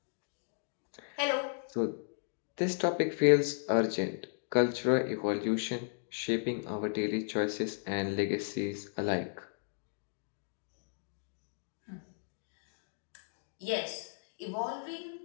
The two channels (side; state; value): right; silent; digital silence